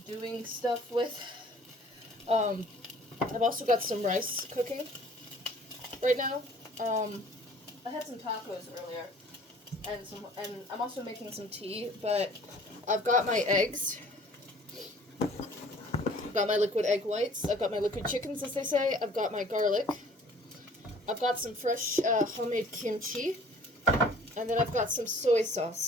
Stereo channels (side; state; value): both; normal; correlation 0.52